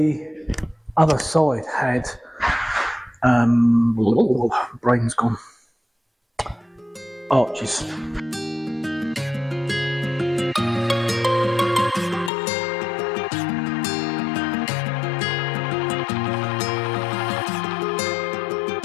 other side had, brain's gone, arches.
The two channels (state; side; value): drops out; right; at 12.3 s